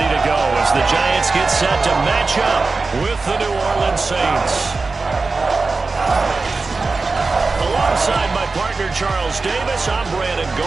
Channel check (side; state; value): left; quieter; 3.9 dB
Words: to go as the Giants get set to match up with the New Orleans Saints. Alongside my partner, Charles Davis, I'm Brandon